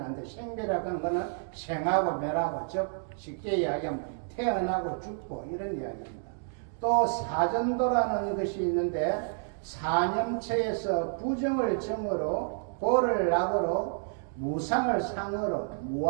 안 돼. 생멸이라고 하는 것은 생하고 멸하고 즉 쉽게 이야기하면 태어나고 죽고 이런 이야기입니다. 또 사전도라는 것이 있는데 사념처에서 부정을 정으로 보를 낙으로 무상을 상으로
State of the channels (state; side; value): silent; left; digital silence